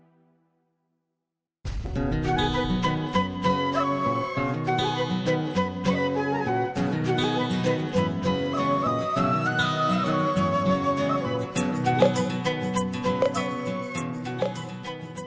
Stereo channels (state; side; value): identical; both; correlation 1.00